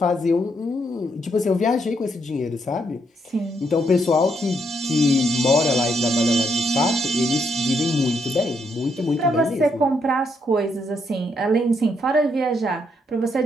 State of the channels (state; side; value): normal; both; correlation 0.76